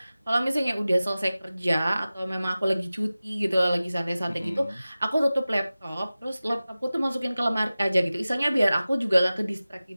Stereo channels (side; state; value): both; inverted; correlation -0.96